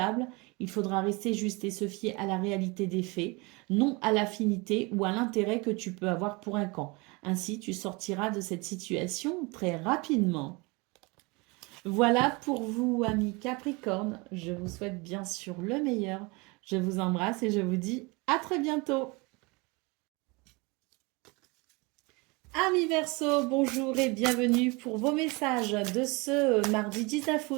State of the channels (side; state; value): left; quieter; 26.9 dB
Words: Il faudra rester juste et se fier à la réalité des faits, non à l'affinité ou à l'intérêt que tu peux avoir pour un camp. Ainsi, tu sortiras de cette situation très rapidement. Voilà pour vous, amis Capricorne. Je vous souhaite bien sûr le meilleur. Je vous embrasse et je vous dis à très bientôt. Amis Verseau, bonjour et bienvenue pour vos messages de ce mardi 19